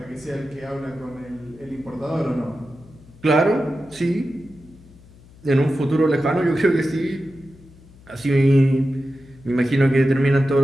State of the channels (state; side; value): noise; left; hum, 24 dB below the sound